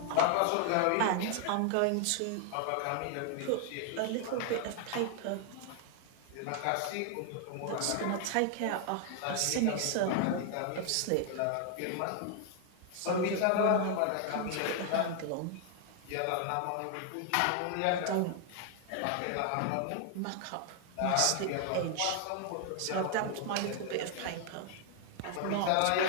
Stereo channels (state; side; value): different; both; correlation 0.00